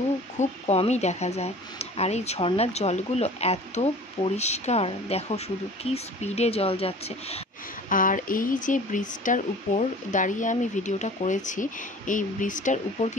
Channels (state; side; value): normal; both; correlation 0.44